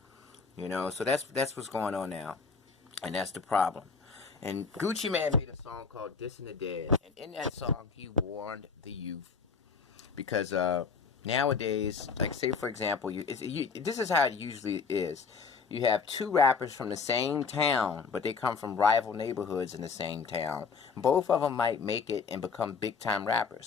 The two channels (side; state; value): right; quieter; 5.1 dB